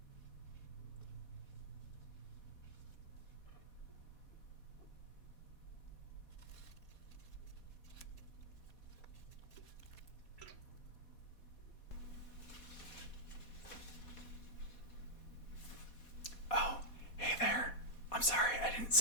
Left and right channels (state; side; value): late; right; 4.2 ms